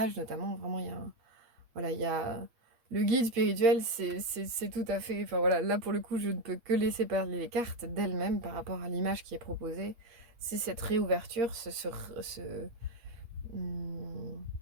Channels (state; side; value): late; left; 8.4 ms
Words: notamment, vraiment il y a voilà, il y a le guide spirituel, c'est tout à fait, enfin voilà, là pour le coup je ne peux que laisser parler les cartes d'elles-mêmes par rapport à l'image qui est proposée, c'est cette réouverture, hum,